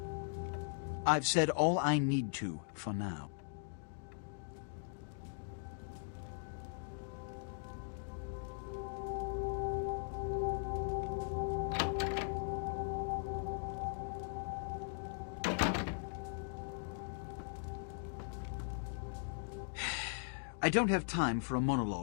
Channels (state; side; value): silent; right; digital silence